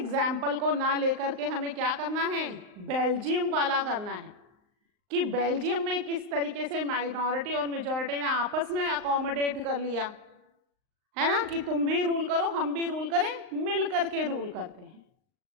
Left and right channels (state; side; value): late; left; 39 ms